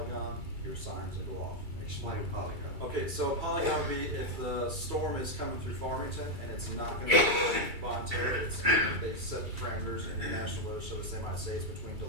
your sirens will go off. Explain polygon. Okay, so polygon would be if the storm is coming through Farmington and it's not gonna be voluntary, they set the parameters in the National Weather Service, they might say it's between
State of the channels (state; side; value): late; left; 2.3 ms